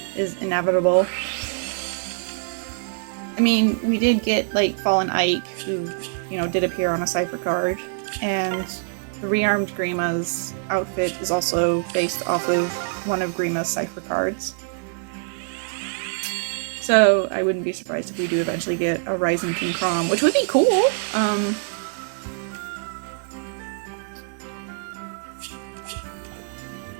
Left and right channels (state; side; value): silent; left; digital silence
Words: is inevitable. I mean, we did get like Fallen Ike, who, you know, did appear on a cipher card, and the rearmed Grima's outfit is also based off of one of Grima's cipher cards. So I wouldn't be surprised if we do eventually get a Rising King Crom, which would be cool.